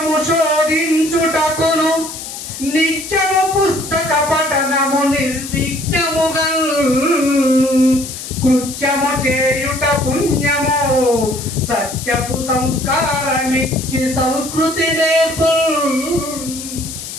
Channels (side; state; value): left; noise; hiss, 10 dB below the sound